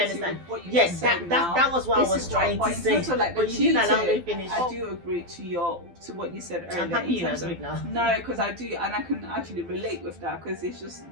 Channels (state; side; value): late; left; 12 ms